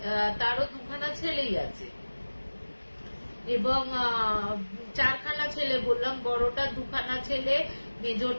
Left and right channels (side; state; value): both; inverted; correlation -1.00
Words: ছেলেই আছে, এবং চারখানা ছেলে বললাম, বড়টার দুখানা ছেলে,